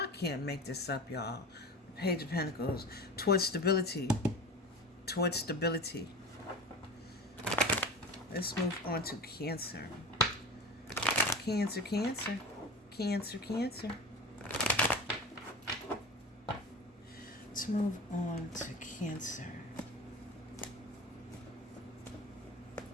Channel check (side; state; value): both; normal; correlation 0.31